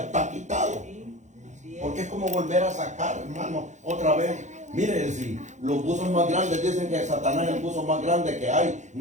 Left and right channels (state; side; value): late; left; 0.35 ms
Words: quitado. Porque es como volver a sacar, hermano, otra vez. Mire, si los buzos más grandes dicen que Satanás es el buzo más grande que hay.